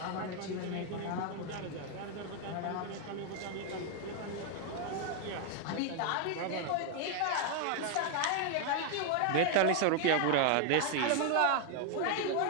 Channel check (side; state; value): both; different; correlation 0.01